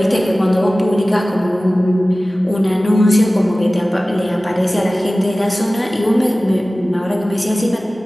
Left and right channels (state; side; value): normal; both; correlation 0.97